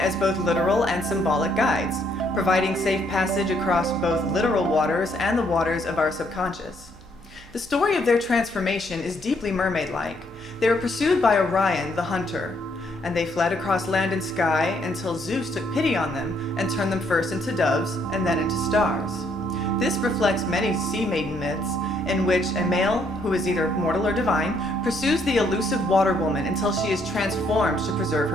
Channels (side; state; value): right; noise; hum, 22 dB below the sound